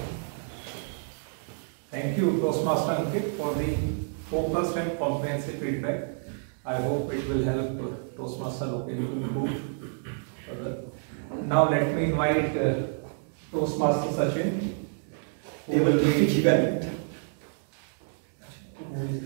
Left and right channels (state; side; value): silent; left; digital silence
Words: Thank you, Toastmaster Ankit, for the focused and comprehensive feedback. I hope it will help Toastmaster Loken to improve further. Now let me invite Toastmaster Sachin, who will be given.